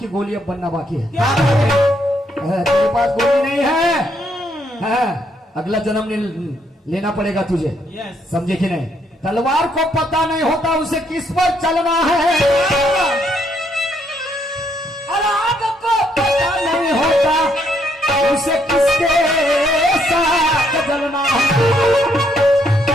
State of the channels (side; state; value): both; normal; correlation 0.72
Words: गोली अब बनना बाकी है. तेरे पास गोली नहीं है. अगला जन्म लेना पड़ेगा तुझे. समझे कि नहीं? तलवार को पता नहीं होता उसे किस पर चलना है और आग को पता नहीं होता उसे किसके साथ जलना है.